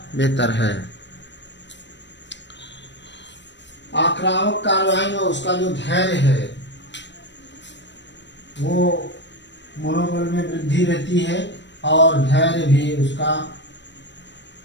बेहतर है। आक्रामक कार्रवाई में उसका जो धैर्य है वो मनोबल में वृद्धि रहती है और धैर्य भी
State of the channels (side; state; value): right; late; 0.52 ms